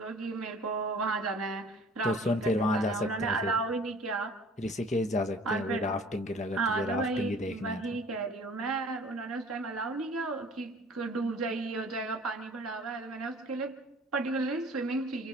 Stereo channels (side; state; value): both; normal; correlation 0.49